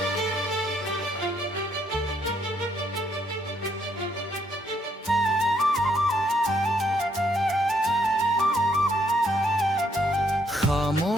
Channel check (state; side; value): normal; both; correlation 0.71